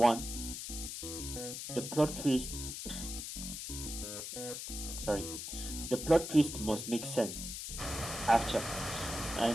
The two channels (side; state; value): left; noise; hiss, 6 dB below the sound